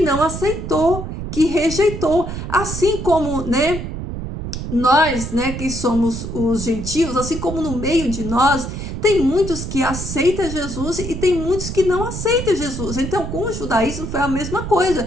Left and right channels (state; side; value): noise; right; rumble, 6 dB below the sound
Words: aceitou, que rejeitou. Assim como, né, nós, né, que somos os gentios, assim como no meio de nós, tem muitos que aceitam Jesus e tem muitos que não aceitam Jesus. Então, com o judaísmo foi a mesma